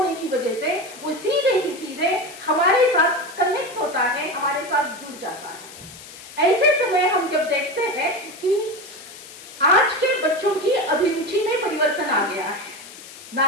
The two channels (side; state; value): left; noise; hiss, 17 dB below the sound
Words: की वजह से वो सीधे ही सीधे हमारे साथ कनेक्ट होता है, हमारे साथ जुड़ जाता है। ऐसे समय हम जब देखते हैं कि आज के बच्चों की अभिरुचि में परिवर्तन आ गया है।